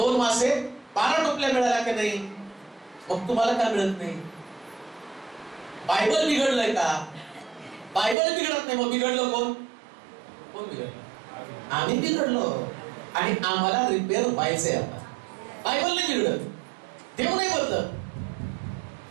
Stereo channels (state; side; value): drops out; left; at 8.2 s